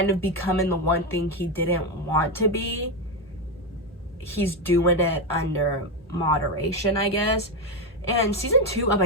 of becoming the one thing he didn't want to be, he's doing it under moderation, I guess. And season 2 of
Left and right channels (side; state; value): both; normal; correlation 0.09